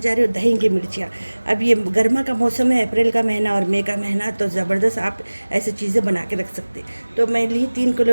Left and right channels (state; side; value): inverted; both; correlation -1.00